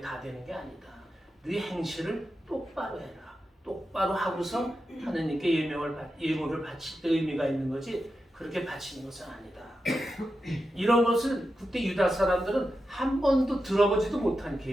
되는 게 아니다. 네 행실을 똑바로 해라. 똑바로 하고서 하느님께 예물을 바칠 때 의미가 있는 거지 그렇게 바치는 것은 아니다. 이런 것을 그때 유다 사람들은 한 번도 들어보지도 못한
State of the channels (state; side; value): normal; both; correlation 0.90